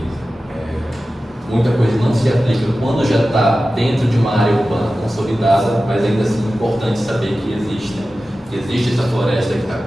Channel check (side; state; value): both; normal; correlation 0.94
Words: muita coisa não se aplica quando já está dentro de uma área urbana consolidada, mas ainda assim é importante saber que existe essa floresta que está